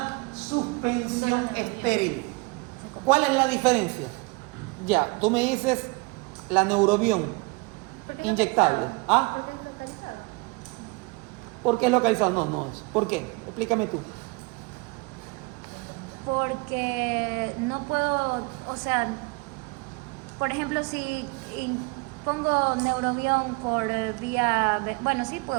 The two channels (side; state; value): left; quieter; 27.2 dB